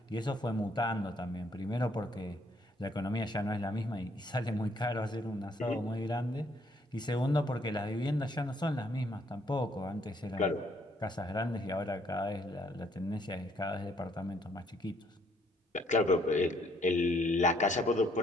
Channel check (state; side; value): normal; both; correlation 0.67